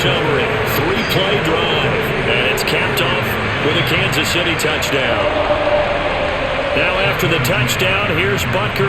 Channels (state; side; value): identical; both; correlation 1.00